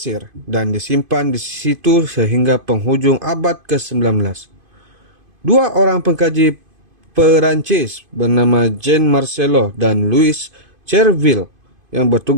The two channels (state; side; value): late; left; 2.5 ms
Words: dan disimpan di situ sehingga penghujung abad ke-19. 2 orang pengkaji Perancis bernama Jean Marcelo dan Louis Cherville yang